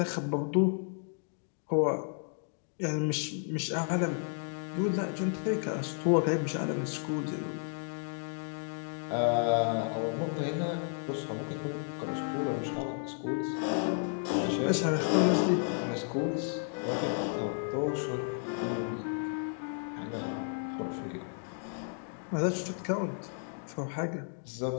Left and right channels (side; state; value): right; silent; 56 dB below the other